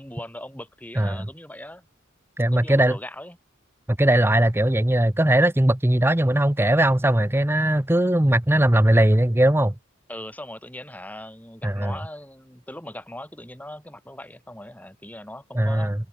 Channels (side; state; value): both; normal; correlation 0.88